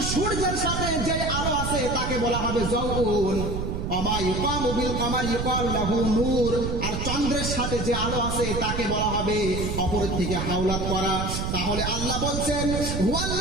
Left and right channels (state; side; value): noise; right; rumble, 3 dB below the sound